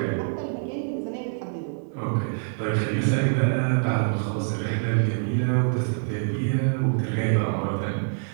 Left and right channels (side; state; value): left; silent; 61 dB below the other